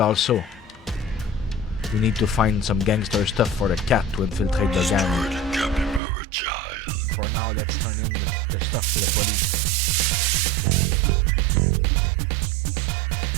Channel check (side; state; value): left; drops out; at 6.0 s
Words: we need to find some gangster stuff for the cat to infiltrate the gang. For now, let's turn in the stuff to the police.